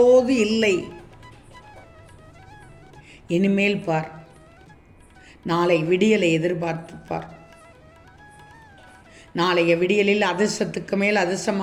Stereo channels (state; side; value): identical; both; correlation 1.00